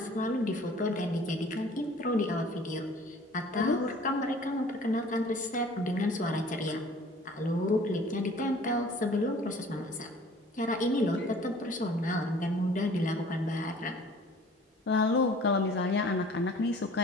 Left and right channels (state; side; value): normal; both; correlation 0.50